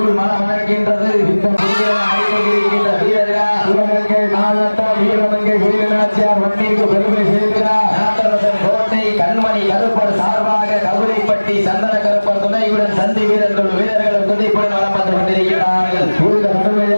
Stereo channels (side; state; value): both; inverted; correlation -1.00